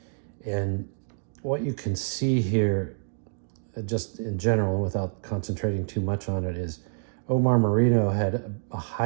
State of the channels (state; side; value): silent; left; digital silence